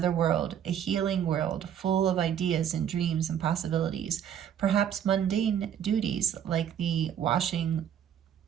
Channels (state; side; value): quieter; left; 9.3 dB